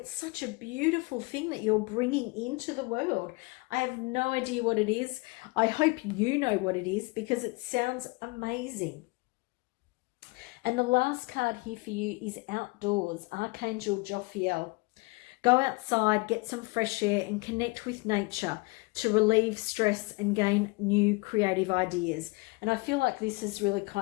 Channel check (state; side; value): quieter; right; 26.2 dB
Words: such a beautiful thing that you're bringing into the world. I have no idea what it is. I hope you know what it is, because it sounds amazing. And the last card here for you is outdoors, Archangel Jophiel. Go outside, get some fresh air, and connect with nature to relieve stress and gain new creative ideas. And I feel like this is really